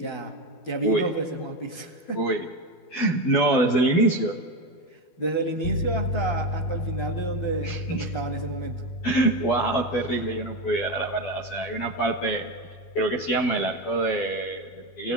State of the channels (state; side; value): late; right; 12 ms